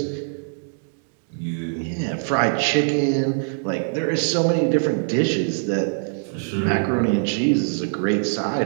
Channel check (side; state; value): left; silent; digital silence